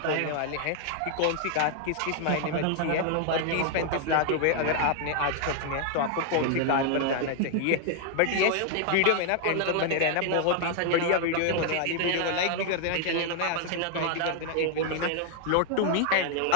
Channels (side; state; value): both; different; correlation 0.00